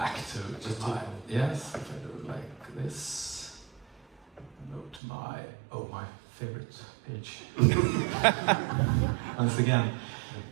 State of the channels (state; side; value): drops out; left; at 5.0 s